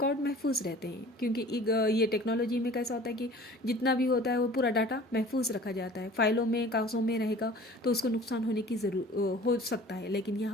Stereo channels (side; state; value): both; normal; correlation 0.46